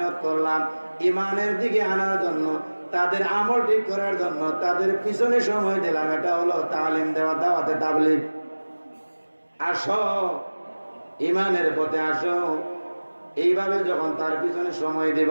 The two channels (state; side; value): inverted; both; correlation -1.00